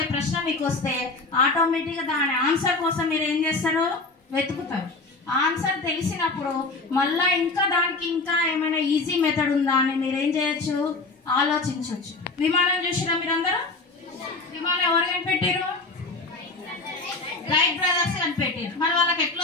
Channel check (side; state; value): right; quieter; 3.5 dB